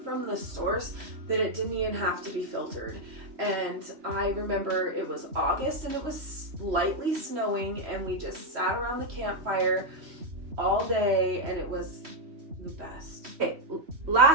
from the source that it didn't even have to be filtered. And I remember it was August and it was slightly snowing and we just sat around the campfire all day and it was the best. Okay,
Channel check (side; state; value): left; late; 3.1 ms